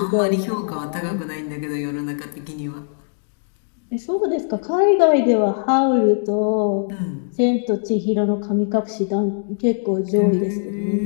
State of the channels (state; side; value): silent; right; digital silence